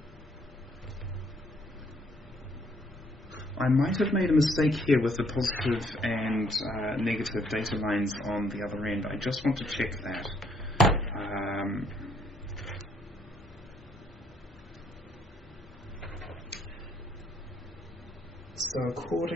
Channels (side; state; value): both; normal; correlation 0.67